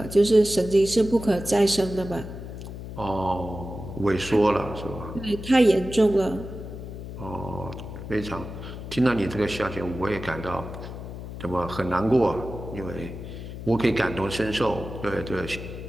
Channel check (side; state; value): left; noise; hum, 10 dB below the sound